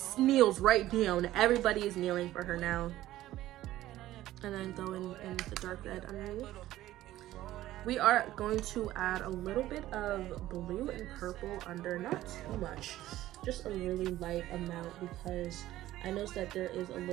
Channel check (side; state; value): left; quieter; 14.8 dB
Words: kneels right down. Everybody is kneeling for her now. And then go in with the dark red underneath. We are going to add a little bit of blue and purple under, not too much, just a really light amount, because I noticed that there is a